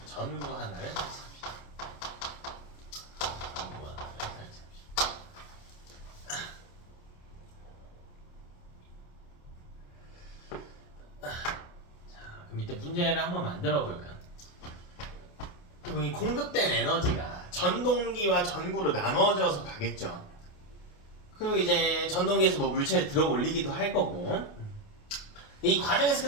전구 하나를 설치합니다. 밑에 문제를 한번 만들어 볼까요? 이 공급된 에너지가 전동기와 전구로 나눠져서 가겠죠. 그리고 이제 전동기에서 뭐 물체를 들어 올리기도 할 거고, 이 과정에서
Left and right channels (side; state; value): right; late; 28 ms